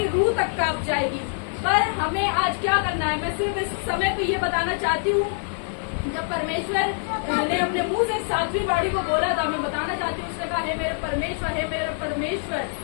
रूह तक कांप जाएगी। पर हमें आज क्या करना है, मैं सिर्फ इस समय पे ये बताना चाहती हूँ। जब परमेश्वर ने अपने मुंह से सातवीं बाड़ी को बोला था, मैं बताना चाहती हूँ, उसने कहा, हे मेरे परमेश्वर,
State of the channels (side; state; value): right; silent; digital silence